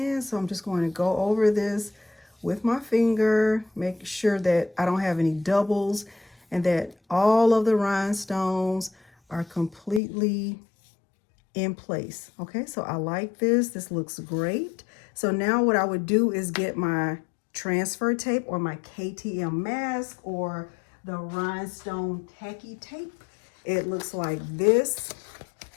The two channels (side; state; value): right; drops out; at 10.0 s